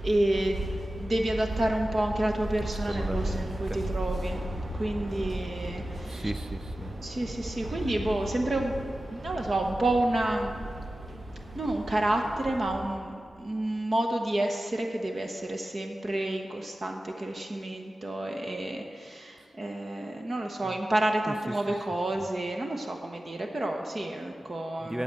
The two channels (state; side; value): normal; both; correlation 0.94